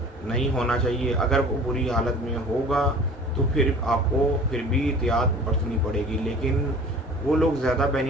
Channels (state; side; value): normal; both; correlation 0.45